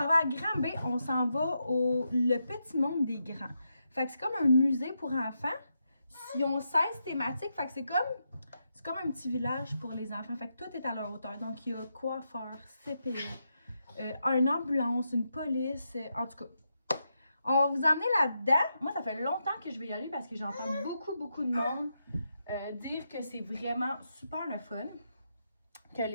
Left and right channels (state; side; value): inverted; both; correlation -0.84